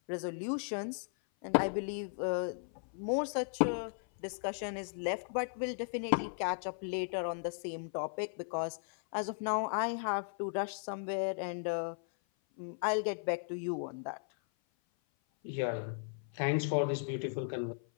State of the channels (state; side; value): silent; right; 54 dB below the other